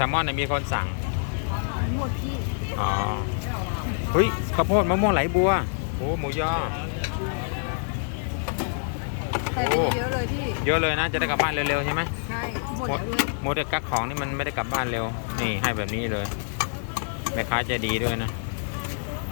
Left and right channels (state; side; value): silent; right; 61 dB below the other